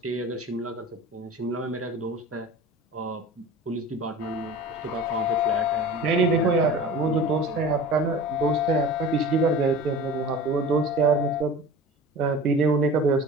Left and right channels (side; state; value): both; normal; correlation 0.38